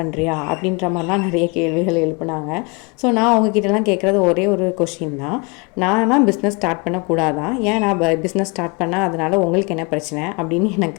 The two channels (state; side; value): quieter; right; 29.7 dB